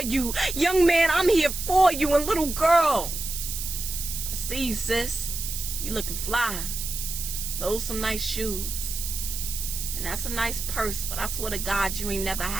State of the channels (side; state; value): right; noise; hiss, 5 dB below the sound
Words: you. Young man, I'm here for you. And little girl, I see you, sis. You looking fly. Those some nice shoes. And that's a nice purse, but I swear to God you ain't never